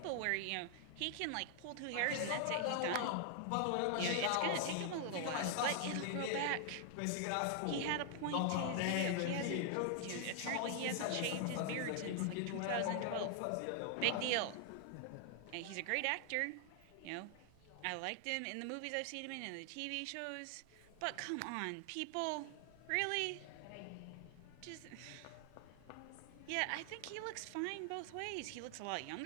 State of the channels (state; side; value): different; both; correlation 0.00